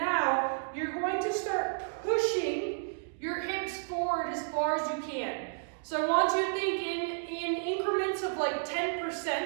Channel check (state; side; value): silent; left; digital silence